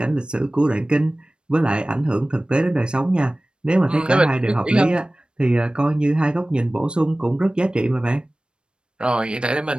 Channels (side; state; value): left; late; 0.054 ms